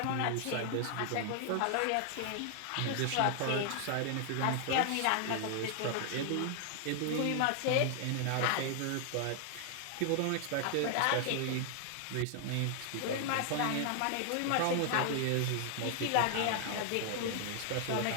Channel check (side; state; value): both; different; correlation 0.00